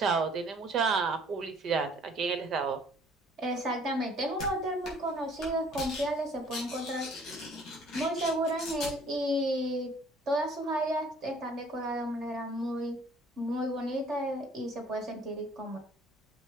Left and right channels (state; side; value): normal; both; correlation 0.56